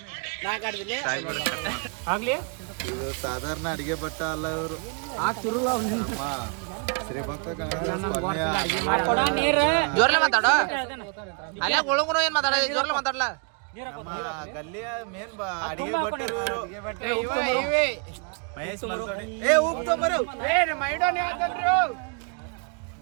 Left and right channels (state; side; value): quieter; left; 37.1 dB